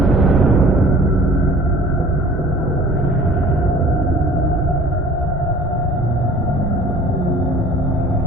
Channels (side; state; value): both; normal; correlation 0.48